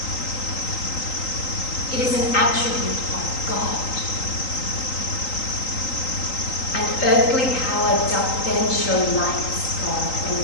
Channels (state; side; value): late; right; 3.8 ms